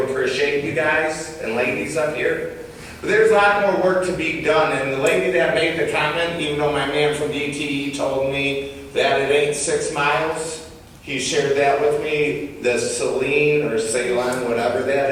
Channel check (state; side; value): identical; both; correlation 1.00